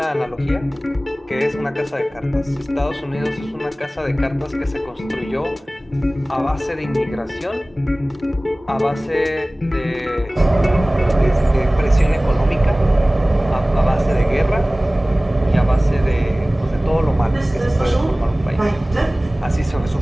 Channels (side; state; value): both; normal; correlation 0.98